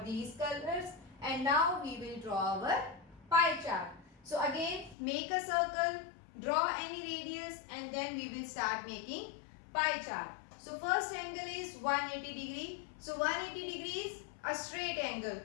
these colors, and now we will draw our pie chart. So again, make a circle, draw any radius, and then we will start making pie chart. So first angle is 180 degree. So 180 degree is a straight angle.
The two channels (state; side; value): drops out; right; at 5.0 s